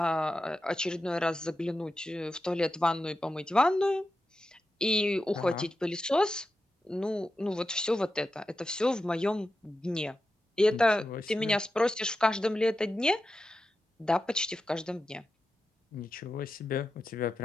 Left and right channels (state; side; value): normal; both; correlation 0.90